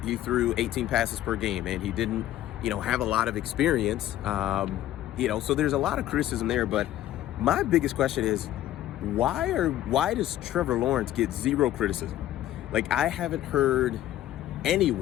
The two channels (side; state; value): right; quieter; 13.3 dB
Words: he threw 18 passes per game, and he didn't have a lot of experience. So there's a lot of criticism there. But my biggest question is, why does Trevor Lawrence get zero criticism? Like, I haven't heard